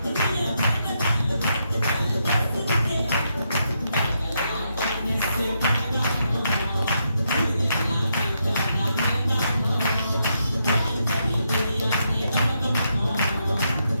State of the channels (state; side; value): inverted; both; correlation -0.80